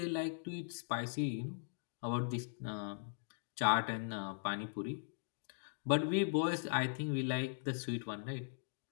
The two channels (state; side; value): silent; right; digital silence